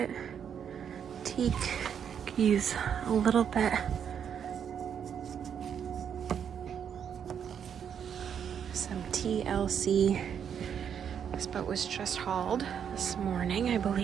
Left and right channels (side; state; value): left; quieter; 8.1 dB